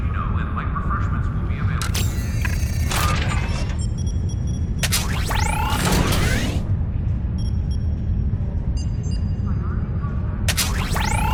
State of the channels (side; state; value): both; identical; correlation 1.00